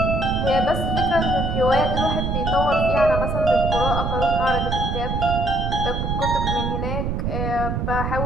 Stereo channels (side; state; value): right; noise; rumble, 1 dB below the sound